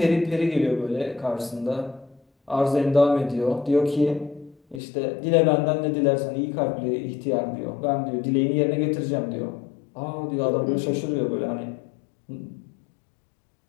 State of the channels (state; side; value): drops out; right; at 4.8 s